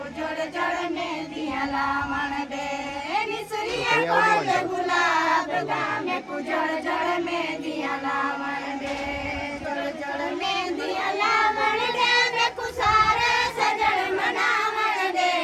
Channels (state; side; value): identical; both; correlation 1.00